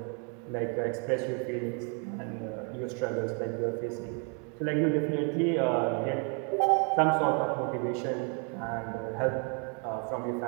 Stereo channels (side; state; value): left; quieter; 38.3 dB